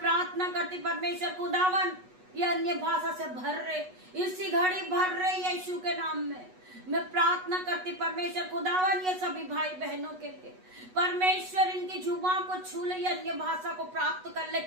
प्रार्थना करती परमेश्वर खुदावन, ये अन्य भाषा से भर रहे, इसी घड़ी भर रहे यीशु के नाम में। मैं प्रार्थना करती परमेश्वर खुदावन, ये सभी भाई बहनों के लिए परमेश्वर इनकी जुबान को छू ले, अन्य भाषा को प्राप्त कर ले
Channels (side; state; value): left; late; 8.1 ms